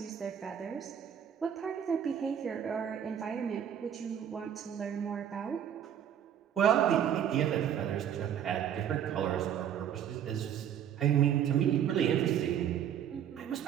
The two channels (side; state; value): left; quieter; 9.4 dB